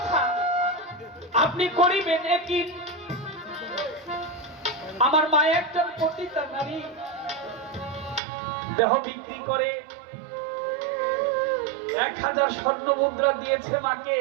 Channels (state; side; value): drops out; left; at 8.2 s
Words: আপনি করিবেন একই। আমার মা একজন পতিতা নারী, দেহ বিক্রি করে 1000 স্বর্ণ মুদ্রা দিয়েছে মাকে